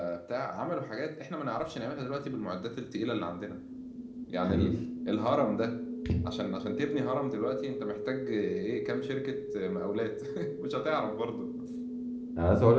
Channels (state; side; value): identical; both; correlation 1.00